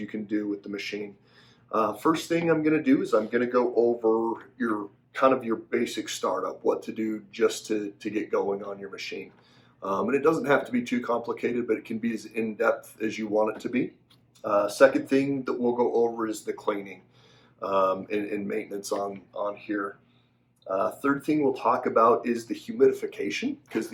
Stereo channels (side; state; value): both; identical; correlation 1.00